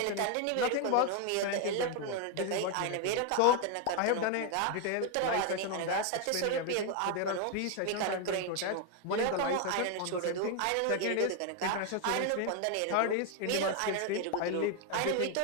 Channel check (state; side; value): different; both; correlation 0.01